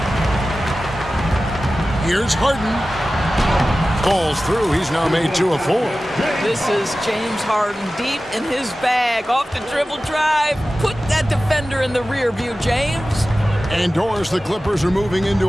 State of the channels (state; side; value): normal; both; correlation 0.95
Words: Here's Harden. Falls through. He's now made 2 of 4. This is James Harden deep in his bag. Off the dribble drive. Put that defender in the rear view, James. And Doris, the Clippers are moving